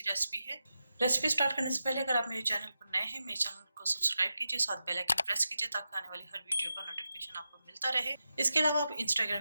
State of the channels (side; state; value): both; inverted; correlation -0.90